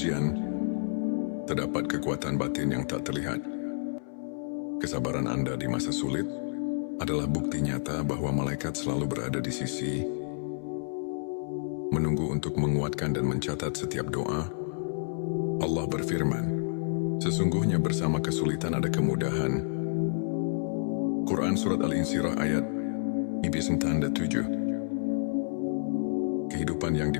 terdapat kekuatan batin yang tak terlihat. Kesabaran Anda di masa sulit adalah bukti nyata bahwa malaikat selalu berada di sisi, menunggu untuk menguatkan dan mencatat setiap doa. Allah berfirman, sesungguhnya bersama kesulitan ada kemudahan. Quran Surat Al-Insyirah ayat 9 tanda 7. Kehidupan yang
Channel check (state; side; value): silent; right; 58 dB below the other